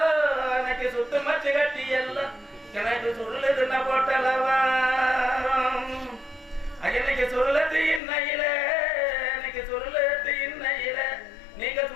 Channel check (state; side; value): drops out; right; at 8.0 s